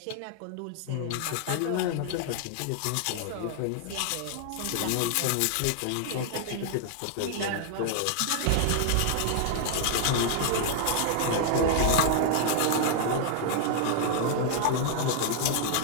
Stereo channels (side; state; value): both; different; correlation 0.00